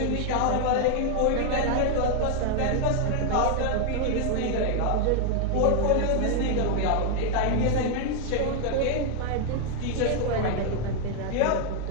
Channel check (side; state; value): both; different; correlation 0.00